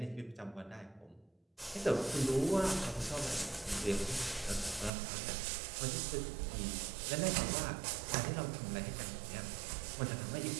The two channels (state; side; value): drops out; left; at 4.9 s